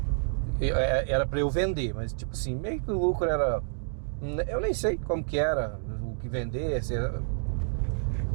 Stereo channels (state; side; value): silent; left; digital silence